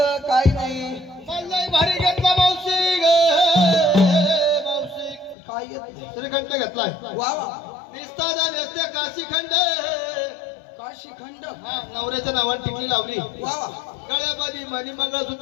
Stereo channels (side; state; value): right; drops out; at 5.4 s